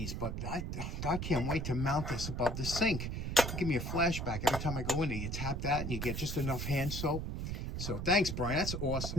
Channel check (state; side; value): noise; right; rumble, 3 dB below the sound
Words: but I can't wait to mount this above the sink. It'll give me a flashback every time I go in there. You tap that and you get just enough hand soap. So thanks, Brian. That's